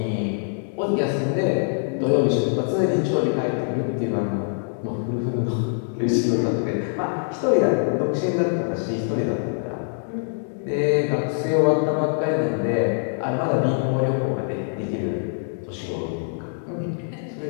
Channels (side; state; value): right; silent; digital silence